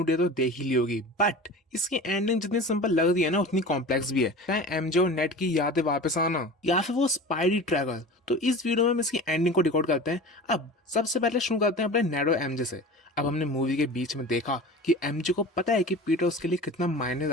डे तो देख ही ली होगी, बट इसकी एंडिंग जितनी सिंपल लग रही है ना उतनी कॉम्प्लेक्स भी है। चाहे एमजे और नेट की यादें वापस आना या फिर वो स्पाइडी ट्रैवल। तो इस वीडियो में हम इसकी एंडिंग को डिकोड करते हैं। अब सबसे पहले शुरू करते हैं अपने नेड और एमजे से। अब हमने मूवी के बीच में देखा कि एमजे को पता है कि पीटर उसके लिए कितना मायने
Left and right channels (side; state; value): both; normal; correlation 0.35